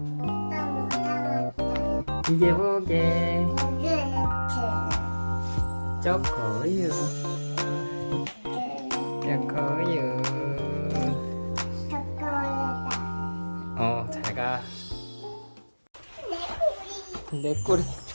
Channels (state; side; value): inverted; both; correlation -1.00